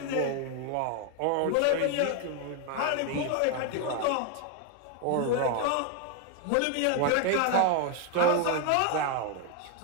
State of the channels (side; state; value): both; different; correlation 0.01